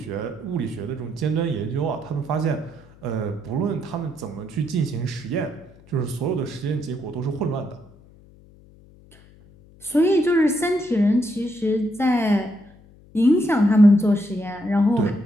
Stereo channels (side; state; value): left; noise; hum, 25 dB below the sound